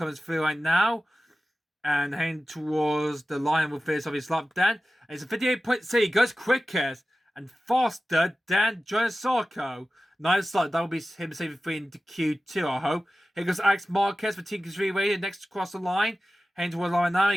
through right now. And heading towards the line with this of his lap, Dan. And it's a 58.6. He goes quickest and faster than John Sarko. Nice start. That will be him saving 3 into Q2, I hope. Here goes Alex Marquez for Team Q3 Radio next across the line. Heading towards the line now.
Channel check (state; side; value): normal; both; correlation 0.95